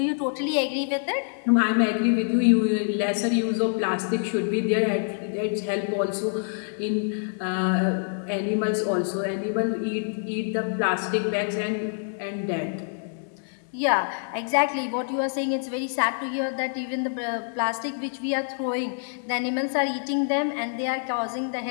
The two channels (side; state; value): right; silent; digital silence